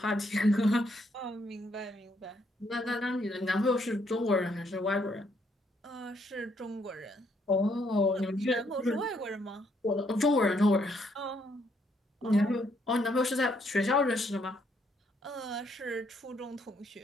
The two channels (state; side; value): normal; both; correlation 0.72